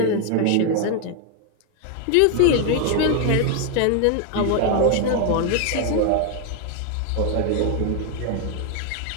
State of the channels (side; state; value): both; different; correlation 0.01